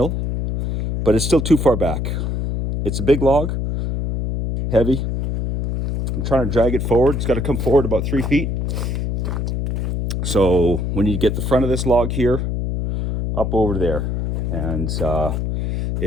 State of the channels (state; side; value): noise; left; hum, 1 dB below the sound